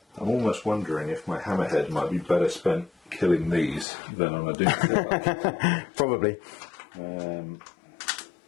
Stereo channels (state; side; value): drops out; right; at 3.9 s